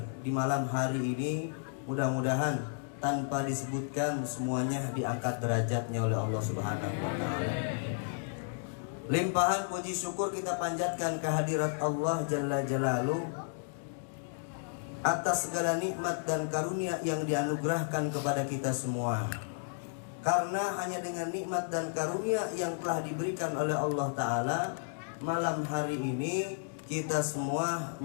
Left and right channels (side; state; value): right; silent; digital silence